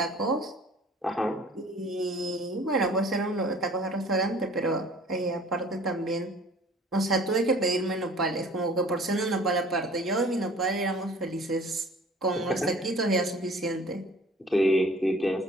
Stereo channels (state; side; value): normal; both; correlation 0.49